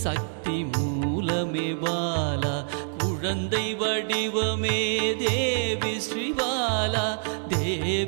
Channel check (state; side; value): silent; left; digital silence